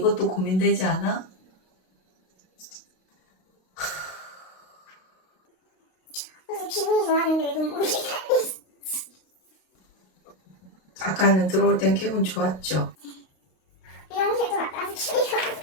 고민되지 않아? 그래서 기분이 좋았는데 눈물이 아까는 들어올 땐 기분 좋았죠. 미용실도 갔다 와서 기분이 좋았어.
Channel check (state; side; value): late; right; 32 ms